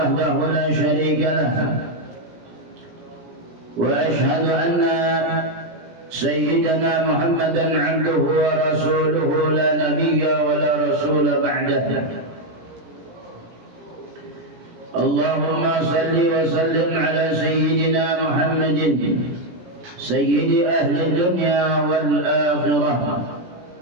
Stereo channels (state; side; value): late; left; 17 ms